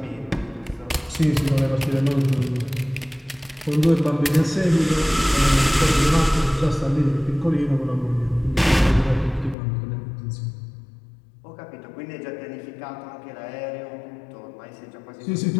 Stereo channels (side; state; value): right; drops out; at 9.6 s